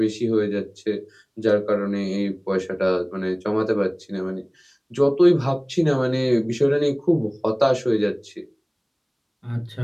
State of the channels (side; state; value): both; identical; correlation 1.00